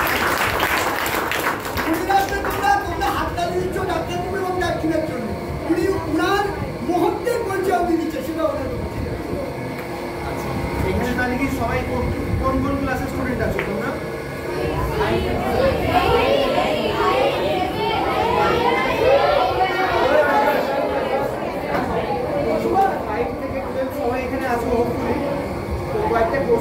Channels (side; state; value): both; identical; correlation 1.00